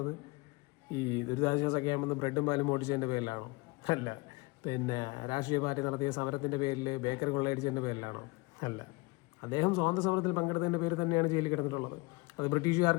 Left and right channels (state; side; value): quieter; right; 25.4 dB